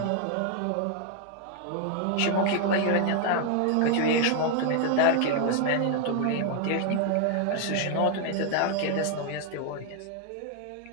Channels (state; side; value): different; both; correlation 0.00